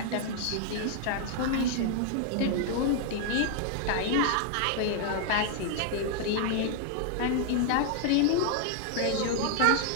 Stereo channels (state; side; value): different; both; correlation 0.00